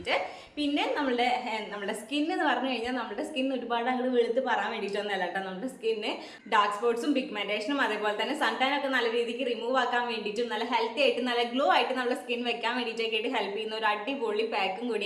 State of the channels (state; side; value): identical; both; correlation 1.00